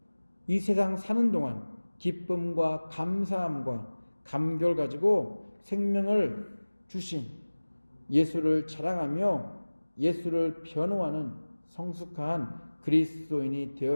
이 세상 사는 동안 기쁨과 감사함과 감격을 가지고 생명을 주신 예수를 자랑하며 예수를 변호하는 성숙한 그리스도인이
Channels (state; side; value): inverted; both; correlation -1.00